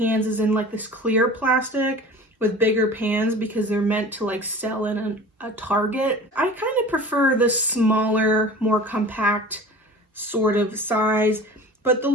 is in like this clear plastic with bigger pans because they're meant to like sell in a Target. I kind of prefer this smaller, more compact sort of size, but the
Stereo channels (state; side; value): normal; both; correlation 0.40